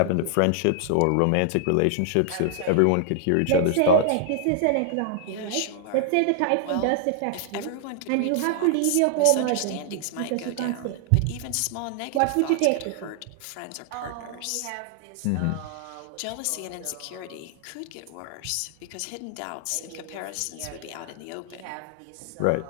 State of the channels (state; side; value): different; both; correlation 0.00